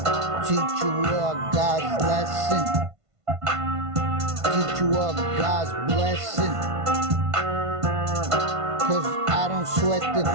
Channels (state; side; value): late; left; 1.5 ms